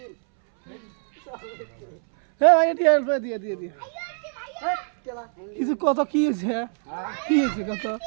দিয়ে দিয়ে কিছু কত কি হয়েছে কি হয়েছে কত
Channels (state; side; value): silent; left; 62 dB below the other